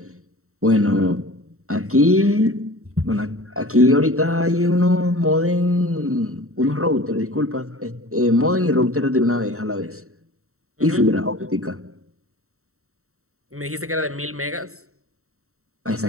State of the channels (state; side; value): late; left; 0.63 ms